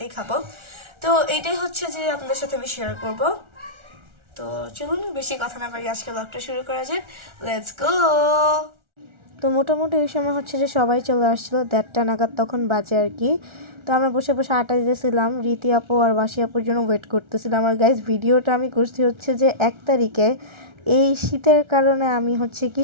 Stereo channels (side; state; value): left; late; 1.4 ms